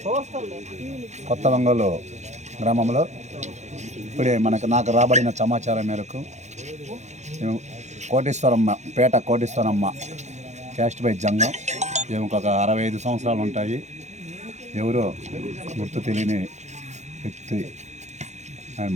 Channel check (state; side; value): late; left; 0.33 ms